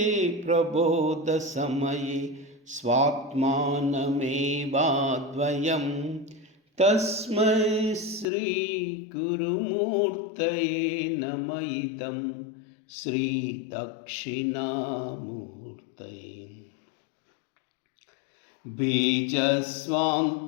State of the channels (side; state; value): right; drops out; at 8.2 s